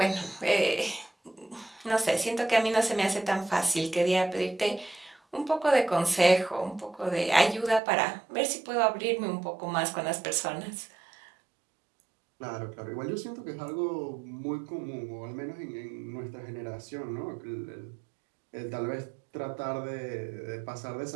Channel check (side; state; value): left; drops out; at 7.8 s